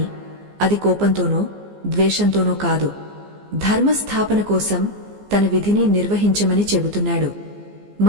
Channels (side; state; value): left; late; 15 ms